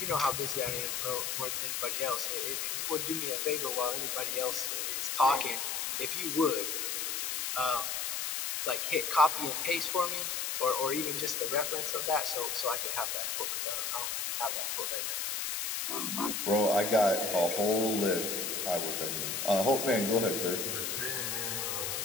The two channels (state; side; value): noise; left; hiss, 1 dB below the sound